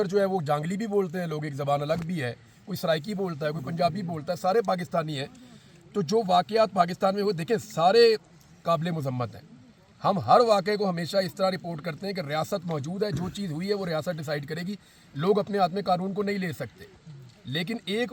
जो है वो जांगली भी बोलते हैं लोग, एक ज़बान अलग भी है, कोई सराइकी बोलता है, कोई पंजाबी बोलता है, सारे पाकिस्तानी हैं। तो जो वाक़यात पाकिस्तान में वो देखें सारे काबिल मुज़म्मत हैं। हम हर वाक़े को हमेशा इस तरह रिपोर्ट करते हैं कि रियासत मौजूद है, जो चीज़ हुई है वो रियासत डिसाइड करेगी, लोग अपने हाथ में कानून को नहीं ले सकते। لیکن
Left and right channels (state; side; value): identical; both; correlation 1.00